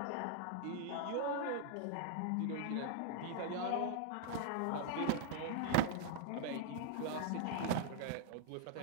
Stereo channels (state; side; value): different; both; correlation 0.00